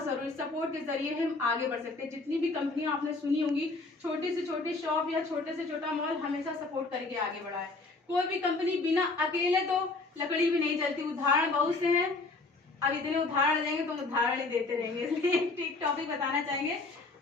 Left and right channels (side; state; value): right; quieter; 3.5 dB